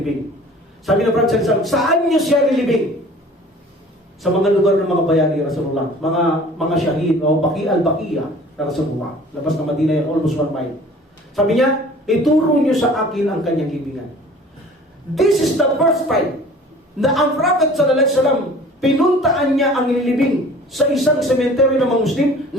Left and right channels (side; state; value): both; normal; correlation 0.47